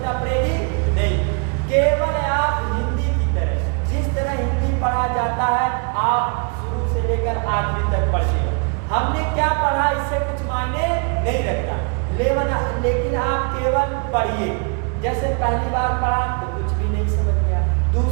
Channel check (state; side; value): quieter; left; 37.8 dB